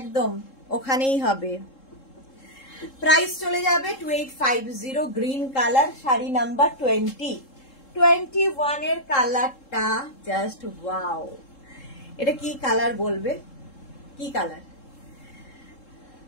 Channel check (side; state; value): right; late; 3.7 ms